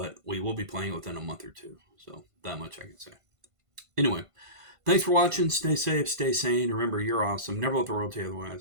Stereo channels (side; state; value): left; late; 1.5 ms